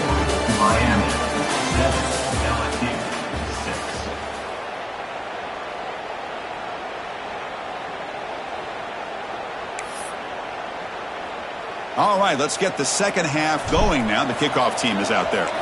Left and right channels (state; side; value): identical; both; correlation 1.00